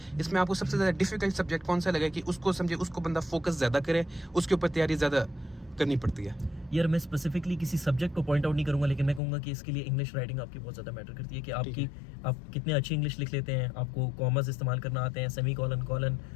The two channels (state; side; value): drops out; right; at 9.2 s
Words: इसमें आपको सबसे ज़्यादा डिफिकल्ट सब्जेक्ट कौन सा लगा है कि उसको समझे, उसको बंदा फोकस ज़्यादा करे, उसके ऊपर तैयारी ज़्यादा करनी पड़ती है? यार मैं स्पेसिफिकली किसी सब्जेक्ट को पॉइंट आउट नहीं करूंगा, लेकिन मैं कहूँगा कि इसके लिए इंग्लिश राइटिंग आपकी बहुत ज़्यादा मैटर करती है, कि आप कितने अच्छी इंग्लिश लिख लेते हैं, आपको कॉमर्स इस्तेमाल करना आते हैं, सेमी कॉलन,